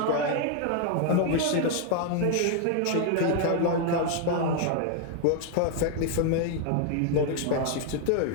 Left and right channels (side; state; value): both; different; correlation 0.00